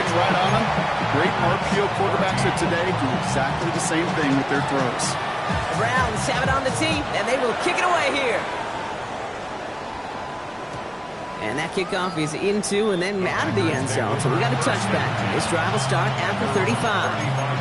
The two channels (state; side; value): identical; both; correlation 1.00